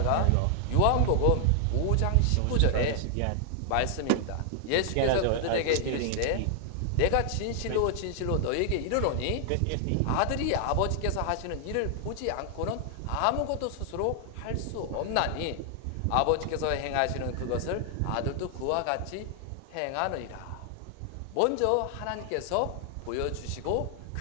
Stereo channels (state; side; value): different; both; correlation 0.00